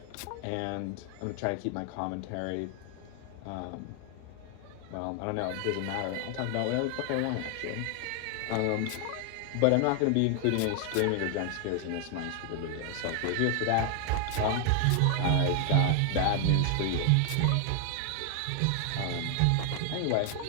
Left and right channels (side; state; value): both; different; correlation 0.00